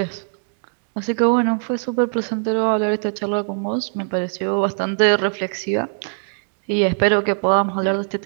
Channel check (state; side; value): silent; left; digital silence